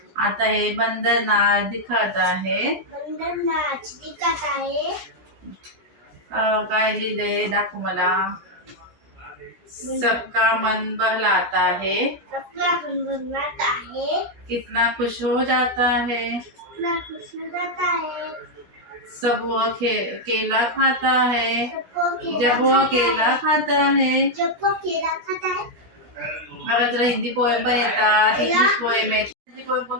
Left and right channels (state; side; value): late; left; 17 ms